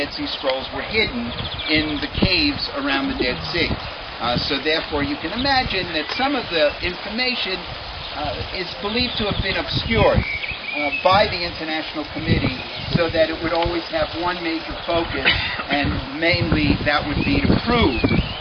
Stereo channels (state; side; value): identical; both; correlation 1.00